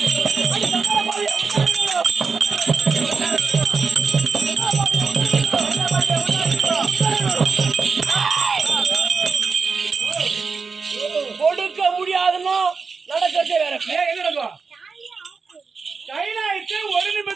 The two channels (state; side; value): quieter; left; 4.9 dB